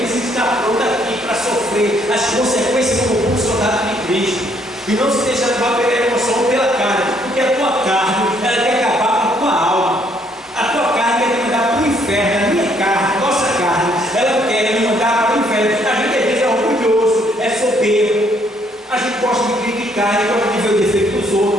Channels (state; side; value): normal; both; correlation 0.67